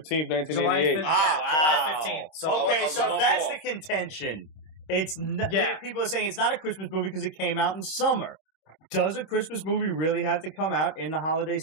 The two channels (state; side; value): late; right; 26 ms